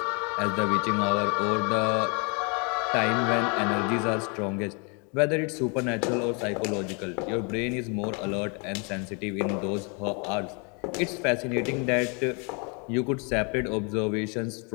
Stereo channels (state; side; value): quieter; right; 34.3 dB